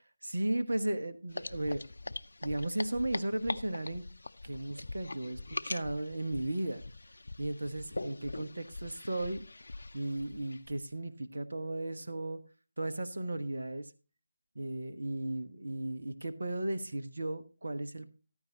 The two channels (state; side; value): inverted; both; correlation -0.97